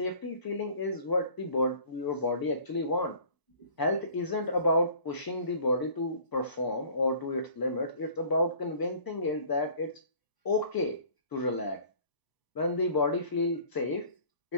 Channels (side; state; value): right; late; 1.0 ms